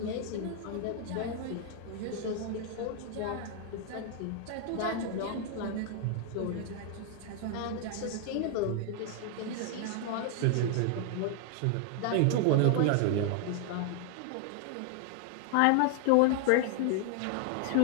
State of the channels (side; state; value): both; different; correlation 0.00